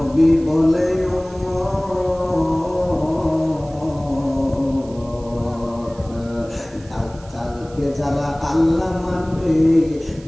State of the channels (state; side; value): noise; right; hiss, 25 dB below the sound